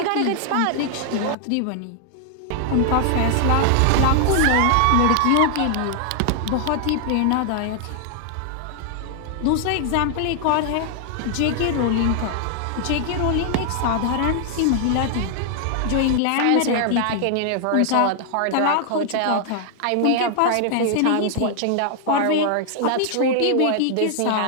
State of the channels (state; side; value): different; both; correlation 0.00